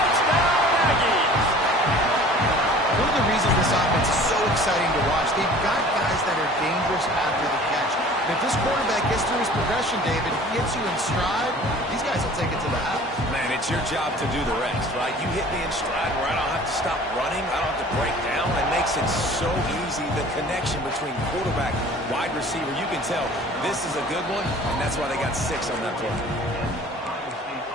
Exciting to watch. They've got guys that are dangerous after the catch. And if this quarterback gets through his progression, David, he hits you in stride, these guys will take it to the house. Man, it's your job to do the rest, right? You hit me in stride where I don't have to stop running, I don't have to break down. It makes it so easy. The connection between quarterback, wide receiver, you can tell this is a good one, and that's why they got 6 on that play.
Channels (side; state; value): both; normal; correlation 0.47